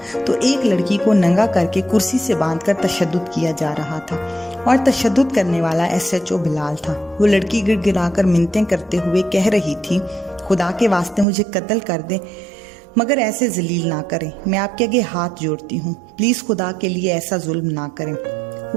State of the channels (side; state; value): left; drops out; at 11.2 s